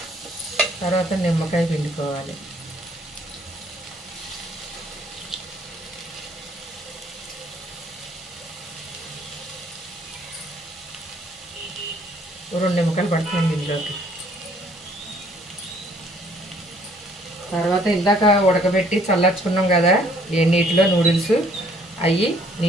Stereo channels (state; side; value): normal; both; correlation 0.62